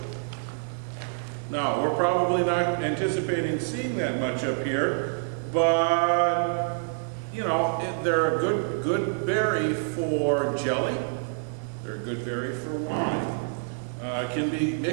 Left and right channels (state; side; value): silent; left; digital silence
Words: Now, we're probably not anticipating seeing that much up here, but, they're a good berry for jelly. They're a good berry for wine. Can be